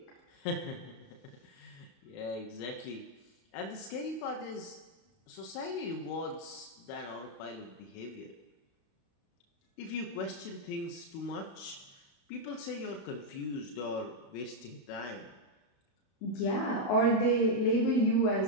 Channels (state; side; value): late; right; 33 ms